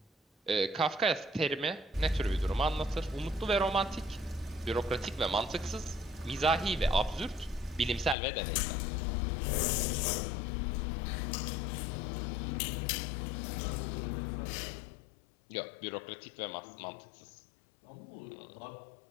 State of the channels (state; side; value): drops out; right; at 8.2 s